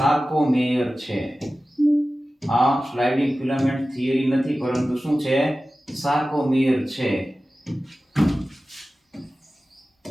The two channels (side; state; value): both; normal; correlation 0.95